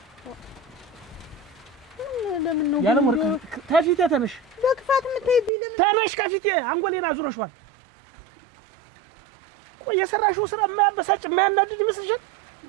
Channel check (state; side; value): drops out; left; at 5.5 s